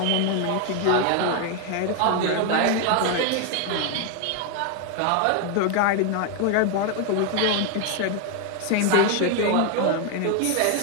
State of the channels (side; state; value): both; different; correlation 0.01